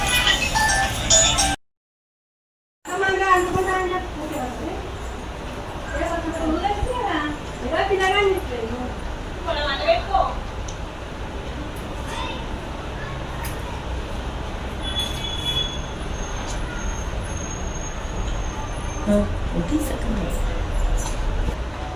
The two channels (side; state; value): both; identical; correlation 1.00